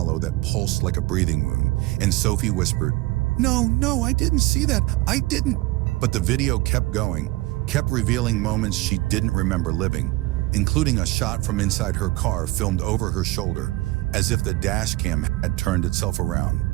that pulsed like a breathing wound, and Sophie whispered, No, I didn't see that, I didn't." But the video kept going, kept revealing moments she didn't remember living, including a shot from inside her car filmed over her shoulder, as if the dashcam had turned itself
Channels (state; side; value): quieter; left; 19.9 dB